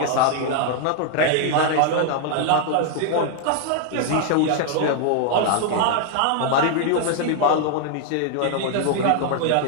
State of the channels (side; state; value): both; different; correlation 0.00